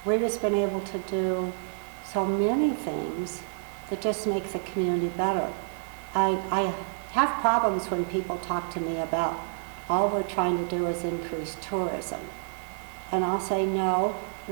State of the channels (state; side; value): silent; left; digital silence